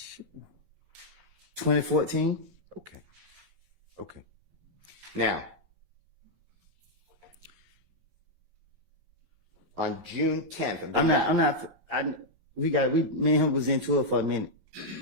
2014. Okay. Okay. Now, on June 10th, Me and him was into it for a minute.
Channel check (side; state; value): left; late; 11 ms